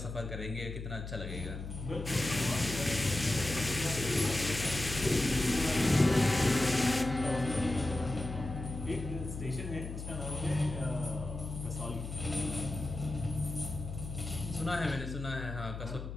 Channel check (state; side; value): noise; left; hum, 8 dB below the sound